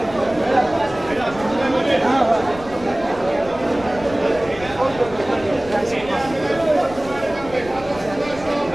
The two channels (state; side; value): noise; left; rumble, 16 dB below the sound